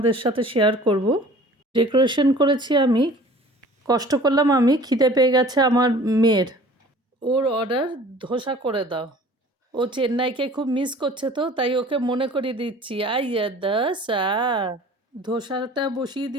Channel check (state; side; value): normal; both; correlation 0.47